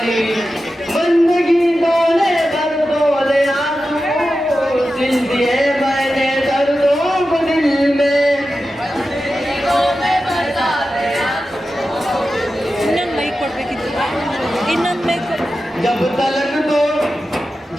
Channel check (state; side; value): normal; both; correlation 0.92